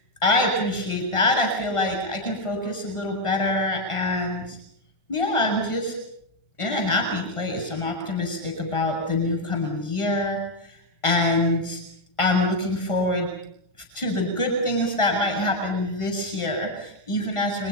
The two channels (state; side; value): late; right; 1.5 ms